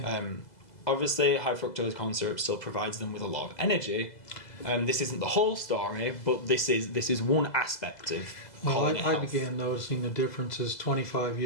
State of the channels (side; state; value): right; late; 2.0 ms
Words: Obviously, high fructose corn syrup still provides them with a lot of energy. This isn't the whole story, but this is one aspect of colony I health. began noticing the differences 25